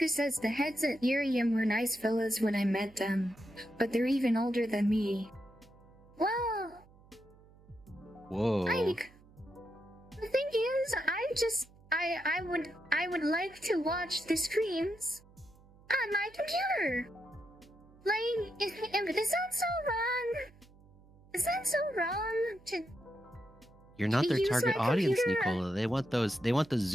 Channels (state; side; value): noise; right; hum, 25 dB below the sound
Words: says the heads at Irium were nice fellas when I met them, but they're even older than me. Well, Whoa. the thing is, I would like to watch the streams on my computer. Like, is that so wrong? Is that so wrong to You're not their use target my audience, computer? Nicola. They want the